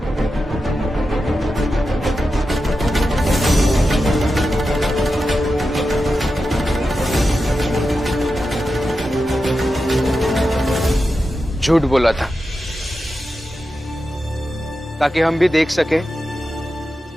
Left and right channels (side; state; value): both; normal; correlation 0.90